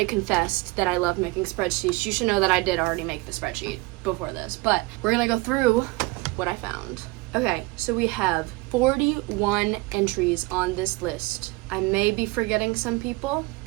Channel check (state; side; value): quieter; left; 23.7 dB